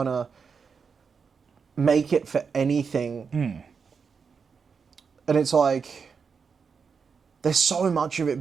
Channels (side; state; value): left; quieter; 5.8 dB